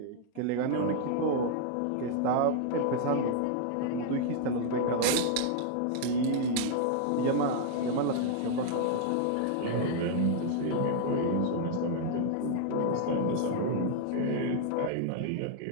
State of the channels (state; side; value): different; both; correlation 0.00